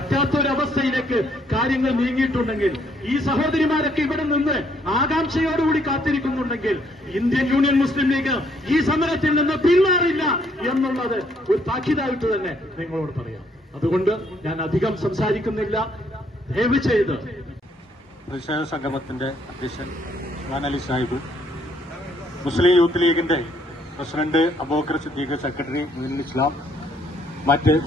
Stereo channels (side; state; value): both; normal; correlation 0.68